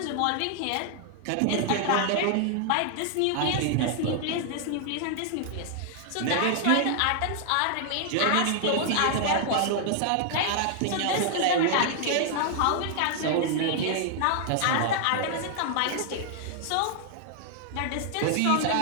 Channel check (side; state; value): both; different; correlation 0.00